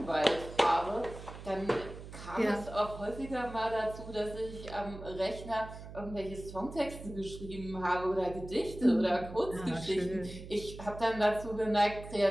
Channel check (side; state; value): right; noise; hum, 13 dB below the sound